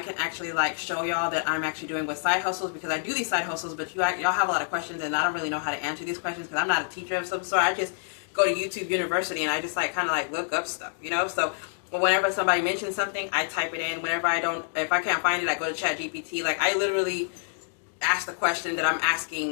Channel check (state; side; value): silent; right; digital silence